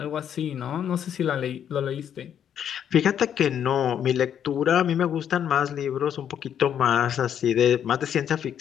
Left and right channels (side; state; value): right; quieter; 9.1 dB